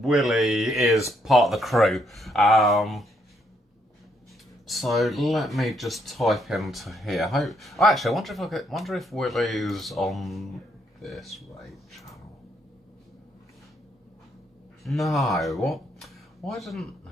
is part of the crew. So let me just type into here. Actually, I wonder if Willie's on this raid channel. No, what? Why didn't?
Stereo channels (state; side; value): normal; both; correlation 0.73